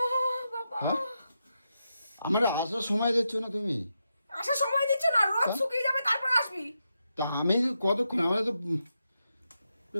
বাবা, হ্যাঁ, আমার আসার সময় দিচ্ছ না তুমি। আসার সময় দিচ্ছ না, রোদ শুকিয়ে যাবে তারপর আসবি। তা আমি কতক্ষণ, আমার তো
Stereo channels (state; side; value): inverted; both; correlation -0.86